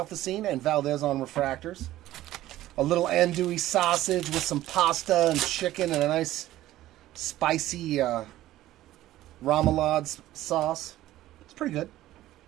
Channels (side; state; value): left; quieter; 14.8 dB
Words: the Scene and Valdez on refractors. A little andouille sausage with some pasta and chicken and a nice spicy remoulade sauce. It's pretty good.